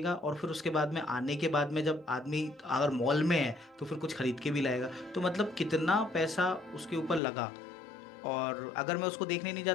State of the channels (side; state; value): right; drops out; at 7.2 s